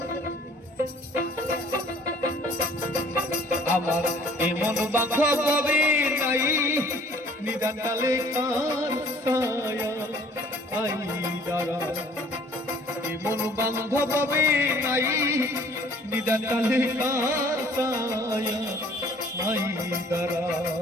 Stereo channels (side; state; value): both; normal; correlation 0.54